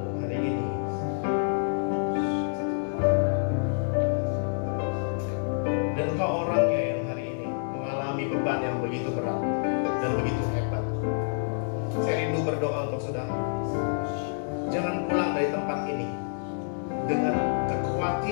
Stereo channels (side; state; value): right; silent; 60 dB below the other